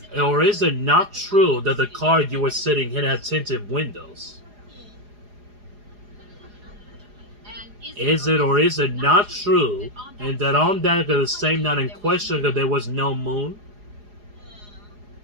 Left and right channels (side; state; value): left; late; 4.8 ms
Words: or is it not true that the car you were sitting in had tinted windows? Is it or is it not true, and that on that the same night in question that there was no moon?